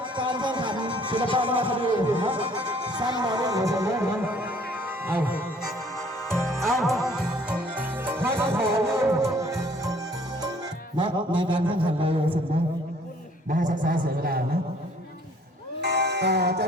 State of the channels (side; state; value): both; normal; correlation 0.58